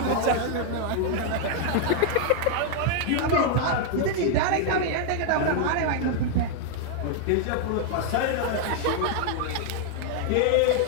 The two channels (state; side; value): different; both; correlation 0.00